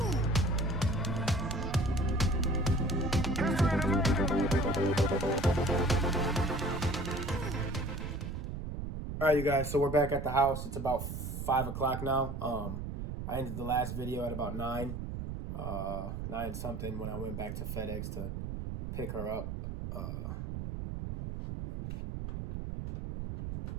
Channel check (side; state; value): right; noise; rumble, 5 dB below the sound